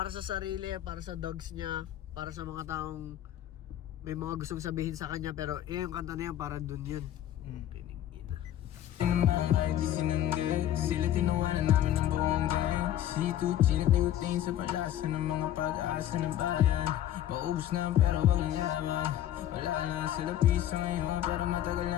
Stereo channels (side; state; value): right; quieter; 11.9 dB